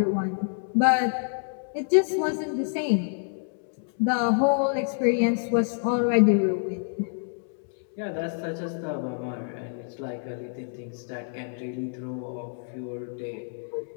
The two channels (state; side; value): silent; right; digital silence